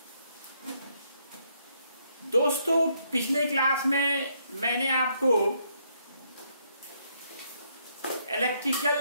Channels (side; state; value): both; inverted; correlation -0.73